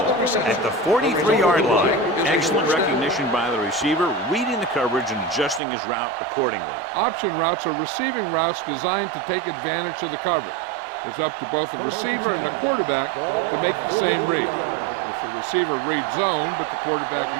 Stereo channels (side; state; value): left; drops out; at 5.6 s